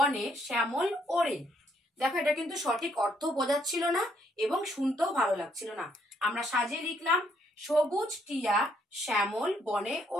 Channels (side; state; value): both; normal; correlation 0.71